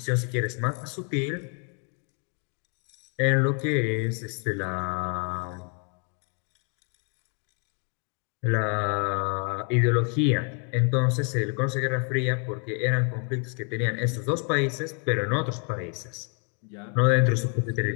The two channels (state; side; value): quieter; right; 38.0 dB